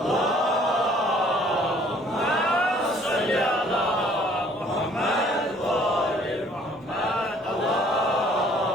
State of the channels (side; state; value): both; normal; correlation 0.58